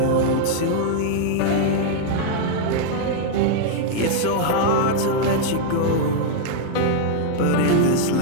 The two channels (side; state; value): both; different; correlation -0.01